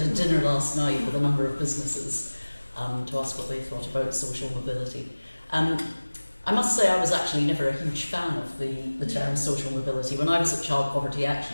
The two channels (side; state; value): both; inverted; correlation -1.00